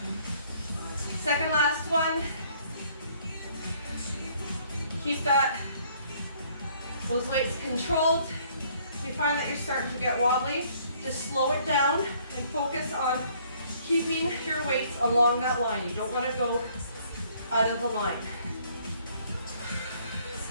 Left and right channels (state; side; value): inverted; both; correlation -0.62